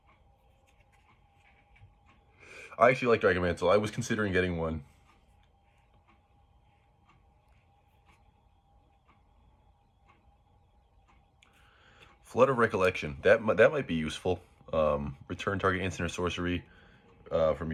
I actually like Dragon Mantle. I was considering getting one. Flood of Recollection. That might be useful. Return target instant or sorcery from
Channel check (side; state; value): both; identical; correlation 1.00